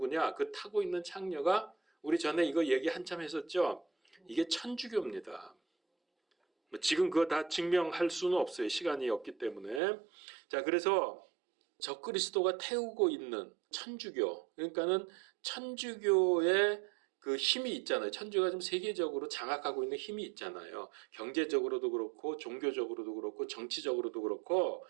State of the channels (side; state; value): left; drops out; at 9.8 s